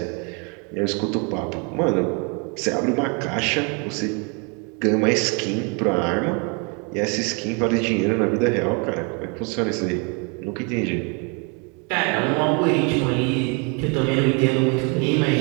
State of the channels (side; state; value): left; quieter; 34.2 dB